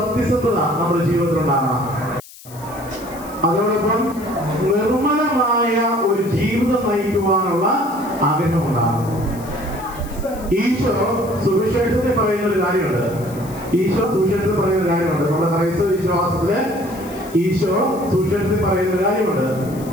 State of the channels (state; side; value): noise; left; hiss, 19 dB below the sound